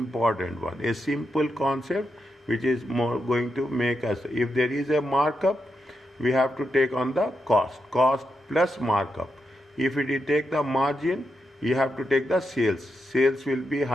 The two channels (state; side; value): normal; both; correlation 0.85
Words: one. A simple concept which is more going to make us, if there is a markup, we have to take on the cost plus markup. If we take the margin, you have to take the sales. Sales will be